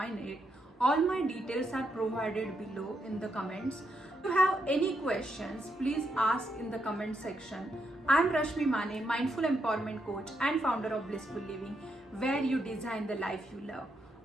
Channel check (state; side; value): normal; both; correlation 0.80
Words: it. All my details are provided below in the comments. If you have any questions, please ask in the comment section. I am Rashmi Mane, Mindful Empowerment Coach and founder of Blissful Living, where you design the life you love.